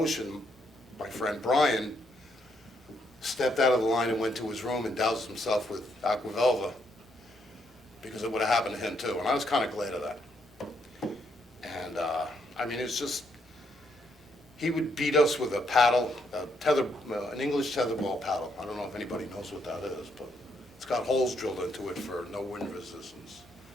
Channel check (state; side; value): normal; both; correlation 0.75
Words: my friend Brian stepped out of the line and went to his room and doused himself with Aquavelva, because it would have happened to him too. And I was kind of glad of that. And I mean, it's just, he would beat us with a paddle, an English tetherball paddle. I don't know if anybody knows what that is, but it's got holes drilled into it for no wind resistance.